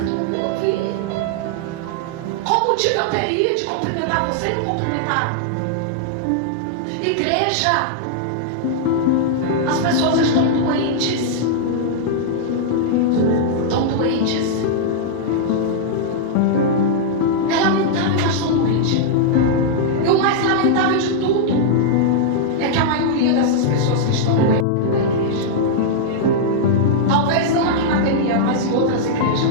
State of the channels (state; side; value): different; both; correlation -0.02